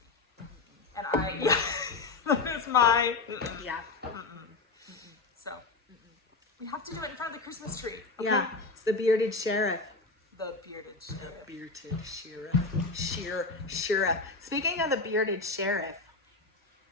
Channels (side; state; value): right; quieter; 3.9 dB